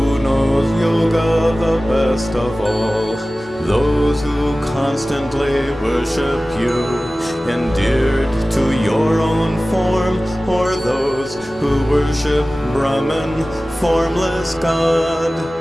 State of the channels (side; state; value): both; normal; correlation 0.97